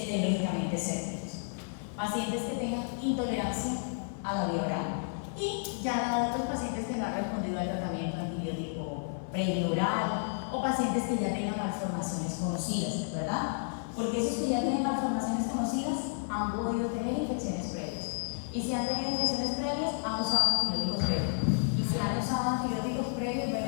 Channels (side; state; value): right; silent; 57 dB below the other